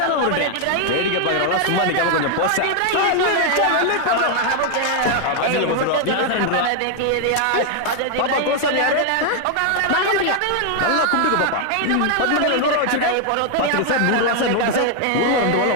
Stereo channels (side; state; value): both; different; correlation 0.00